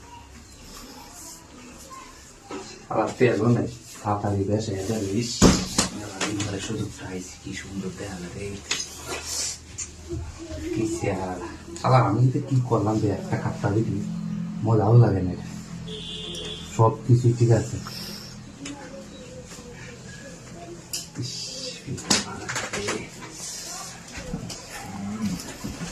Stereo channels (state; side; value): identical; both; correlation 1.00